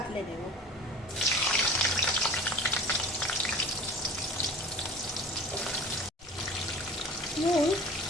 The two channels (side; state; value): both; normal; correlation 0.40